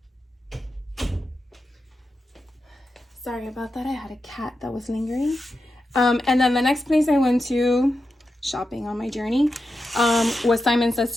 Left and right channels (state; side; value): normal; both; correlation 0.89